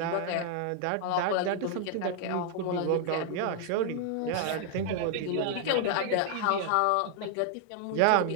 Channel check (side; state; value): both; different; correlation 0.00